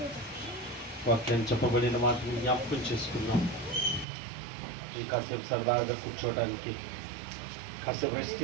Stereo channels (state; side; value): drops out; left; at 4.0 s